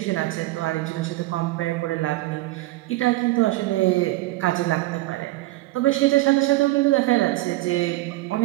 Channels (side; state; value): left; quieter; 18.4 dB